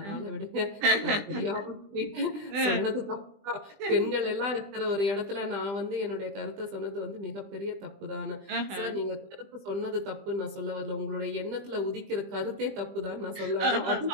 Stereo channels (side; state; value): left; late; 20 ms